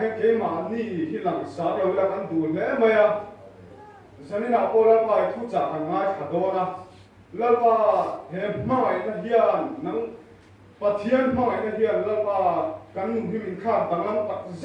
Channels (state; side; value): identical; both; correlation 1.00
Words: cái mà ni hi lang sa đều là ăn đủ lẽ mày à dân in nào po là ba thu trả hàng ngày khá đó na là ba hay mai na hiền nắng Pathian mai na hian lapa kan nu himin kha tanglam tak